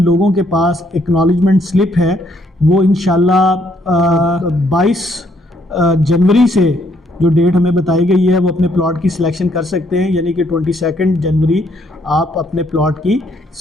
لوگوں کے پاس ایکنالجمنٹ سلپ ہے وہ انشاءاللہ 22 جنوری سے جو ڈیٹ ہمیں بتائی گئی ہے وہ اپنے پلاٹ کی سلیکشن کر سکتے ہیں. یعنی کہ 22 جنوری آپ اپنے پلاٹ کی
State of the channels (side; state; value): both; normal; correlation 0.70